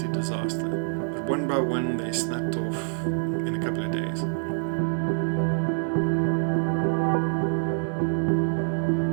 disaster. But one by one, they snapped off in a couple of days.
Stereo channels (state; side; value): silent; left; 61 dB below the other